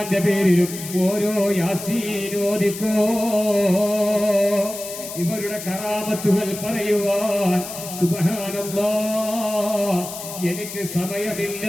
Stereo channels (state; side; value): noise; left; hiss, 10 dB below the sound